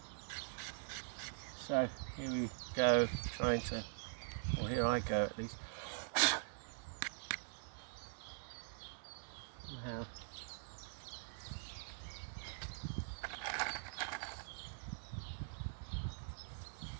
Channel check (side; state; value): left; silent; digital silence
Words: So here we go, or here I go at least. Somehow